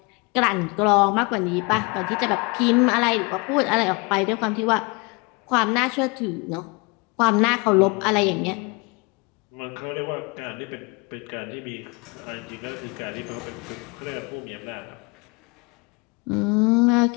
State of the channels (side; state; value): right; quieter; 29.1 dB